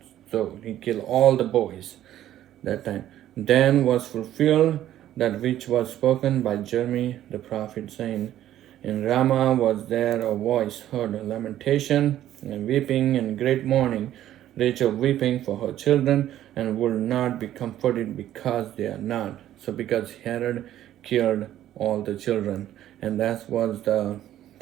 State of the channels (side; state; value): left; quieter; 12.4 dB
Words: So he killed all the boys that time. Then was fulfilled that which was spoken by Jeremy the prophet, saying, in Ramah was there a voice heard, a lamentation and weeping and great mourning, Rachel weeping for her children, and will not be comforted because they are not. So because Herod killed all the children, and that was the